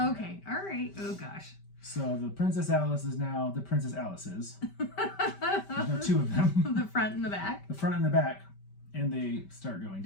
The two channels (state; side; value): late; right; 5.1 ms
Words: all right. Oh, gosh. So the Princess Alice is now the Princess Alice's. There's no 2 of them. The front and the back. The front and the back. And they start going